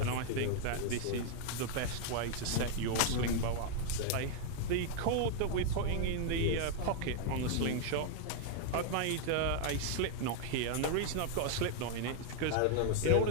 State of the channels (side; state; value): both; different; correlation 0.00